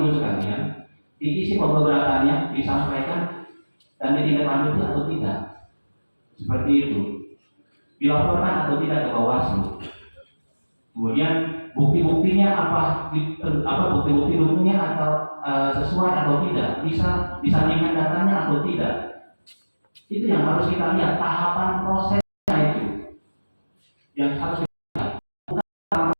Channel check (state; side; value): inverted; both; correlation -1.00